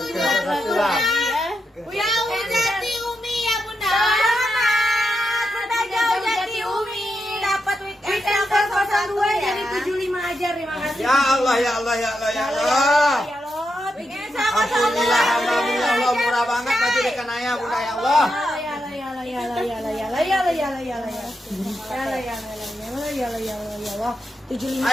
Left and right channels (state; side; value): normal; both; correlation 0.85